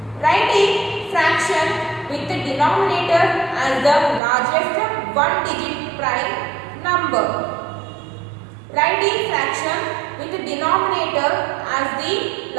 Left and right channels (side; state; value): left; drops out; at 4.2 s